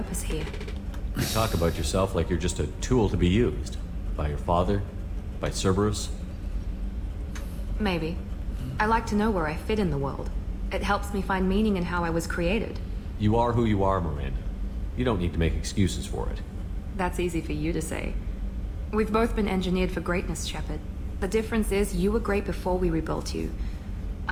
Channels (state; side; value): identical; both; correlation 1.00